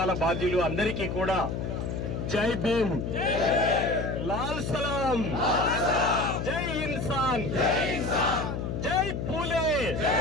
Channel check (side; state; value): left; noise; hum, 3 dB below the sound